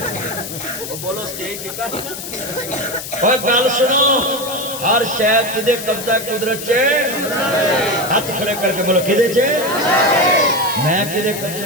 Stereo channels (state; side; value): noise; left; hiss, 9 dB below the sound